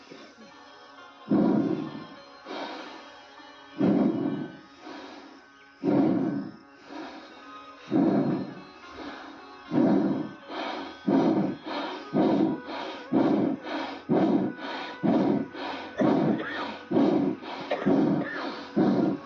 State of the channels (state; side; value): identical; both; correlation 1.00